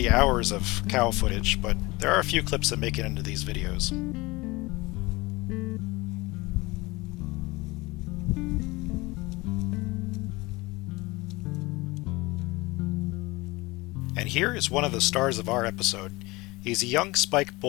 hours of cow footage, but there are a few clips that make it into these videos. And here is one of the stars of our episode. He's a young spike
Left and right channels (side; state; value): right; quieter; 22.5 dB